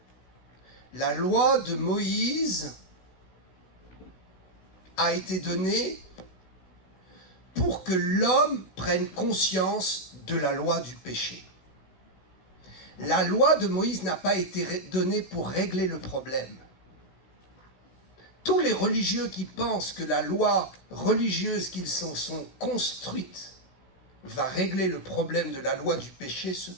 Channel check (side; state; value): right; late; 16 ms